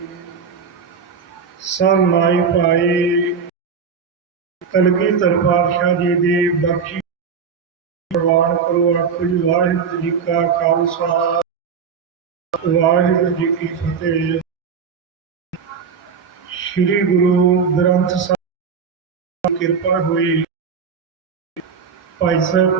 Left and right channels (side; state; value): left; quieter; 6.1 dB